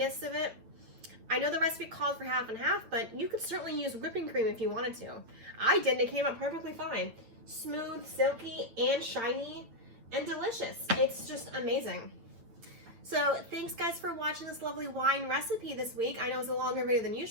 of it. I know the recipe called for half and half, but you could certainly use whipping cream if you wanted to. I didn't. It came out perfectly fine. Smooth, silky, and shiny, and delicious. It's just amazing. So thanks guys for watching this lovely wine recipe this week. I know it's a longer video than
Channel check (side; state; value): left; late; 8.9 ms